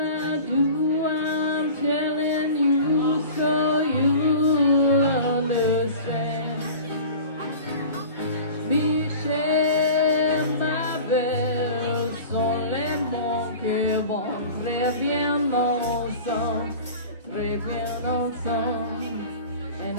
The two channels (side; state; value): both; inverted; correlation -0.39